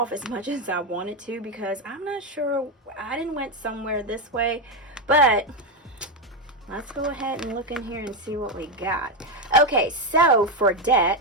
as much as I wanted to because I'm not sure. I didn't went somewhere this way, but let's go ahead and look in here and see what we got. Okay, so for debt,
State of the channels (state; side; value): normal; both; correlation 0.08